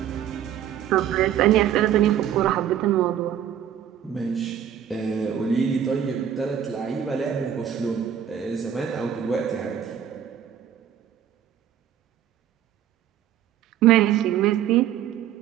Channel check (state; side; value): quieter; left; 9.8 dB